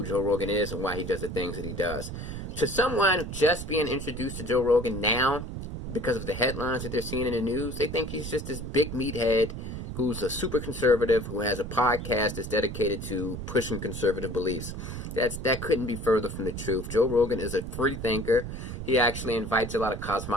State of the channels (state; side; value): noise; right; rumble, 7 dB below the sound